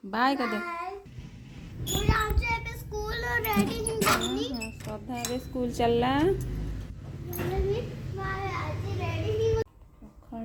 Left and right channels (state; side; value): identical; both; correlation 1.00